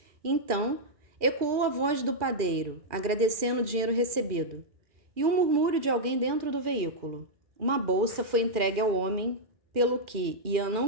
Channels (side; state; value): left; late; 2.4 ms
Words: Então, ecoou a voz do padeiro, agradecendo o dinheiro recebido, e um murmúrio de alguém dentro do veículo. Uma bolsa foi entregue ao homem, pelo que Ian